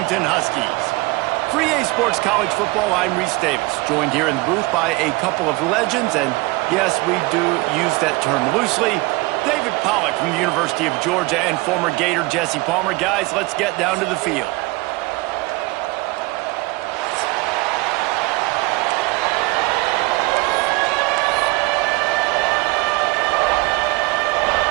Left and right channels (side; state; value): left; quieter; 22.9 dB